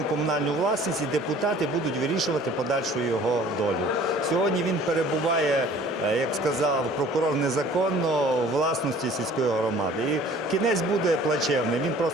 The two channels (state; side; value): normal; both; correlation 0.50